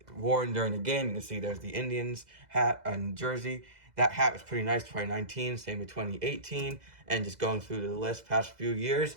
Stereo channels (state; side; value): late; left; 2.0 ms